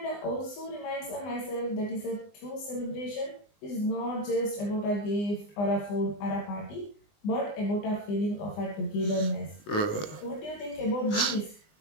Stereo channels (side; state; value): right; late; 20 ms